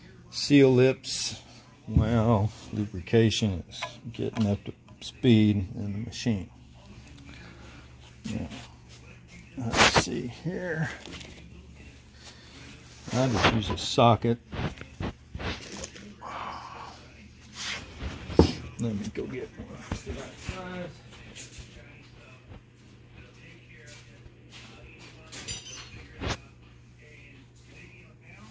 seal lips while lubrication is getting up to speed in the machine. Now, let's see here. I'll just use a socket. Let me go get one.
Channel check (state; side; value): identical; both; correlation 1.00